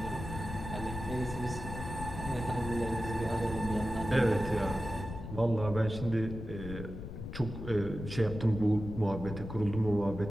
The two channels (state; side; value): noise; left; rumble, 8 dB below the sound